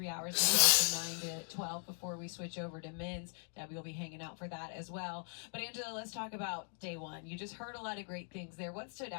hours of the day from 9 to 12 before we switch over to men's. Debbie will be hanging out for that as well. But, Angela, let's talk about day one. You just heard a lot of great things there. What stood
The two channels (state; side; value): silent; right; 51 dB below the other